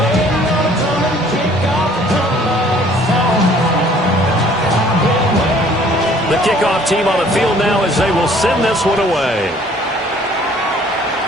Kickoff team on the field now as they will send this one away.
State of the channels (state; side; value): normal; both; correlation 0.56